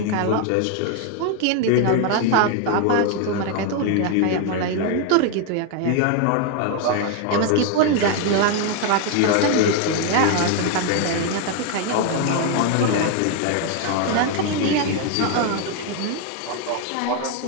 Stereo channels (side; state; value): both; different; correlation 0.01